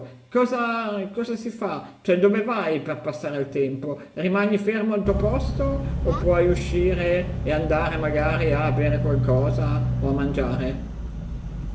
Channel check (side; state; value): both; identical; correlation 1.00